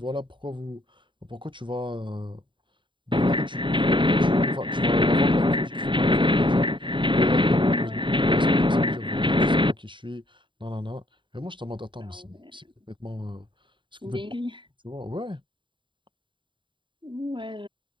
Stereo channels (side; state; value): left; late; 0.23 ms